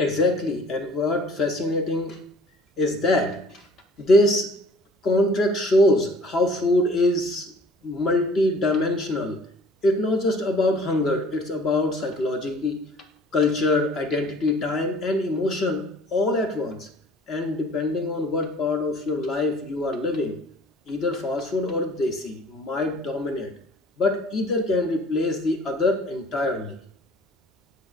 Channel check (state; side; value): normal; both; correlation 0.51